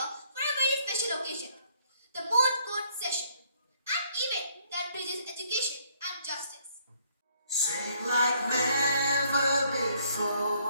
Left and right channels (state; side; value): inverted; both; correlation -0.66